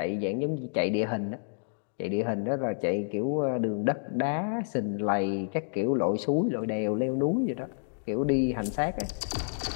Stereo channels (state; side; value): silent; right; digital silence